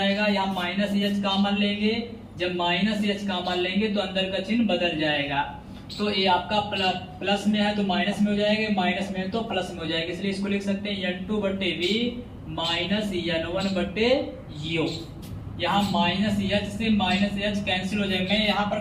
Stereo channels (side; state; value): both; identical; correlation 1.00